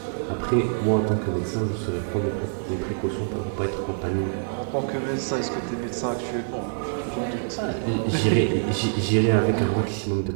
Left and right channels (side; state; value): left; silent; digital silence